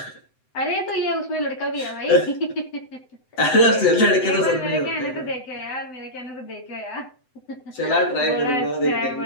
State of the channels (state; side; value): late; right; 7.8 ms